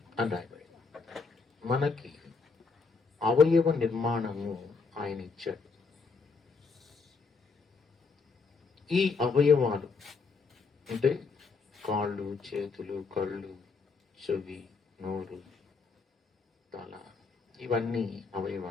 అని రాయబడి, మనకి అవయవ నిర్మాణము ఆయన ఇచ్చాడు. ఈ అవయవాలు అంటే కాళ్ళు, చేతులు, కళ్ళు, చెవి, నోరు, తల, ఇవన్నీ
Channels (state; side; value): quieter; right; 4.6 dB